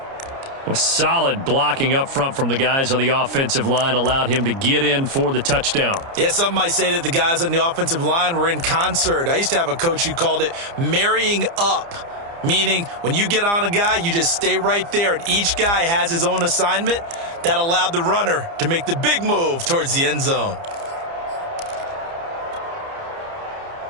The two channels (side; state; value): left; late; 30 ms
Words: Well, solid blocking up front from the guys on the offensive line allowed him to get in for the touchdown. Yeah, some might say that the guys on the offensive line were in concert. I used to have a coach who called it marrying up, meaning when you get on a guy, you just stay right there, and each guy has his own assignment. That allowed the runner to make the big move towards the end zone.